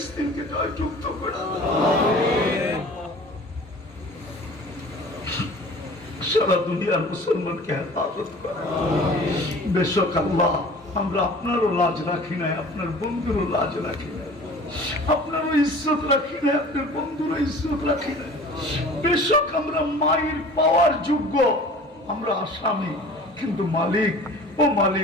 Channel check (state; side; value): normal; both; correlation 0.44